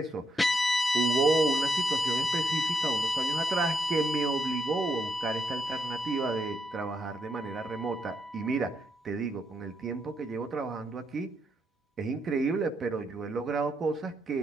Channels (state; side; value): normal; both; correlation 0.80